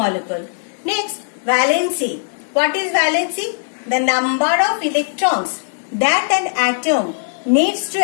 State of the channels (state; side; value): silent; right; digital silence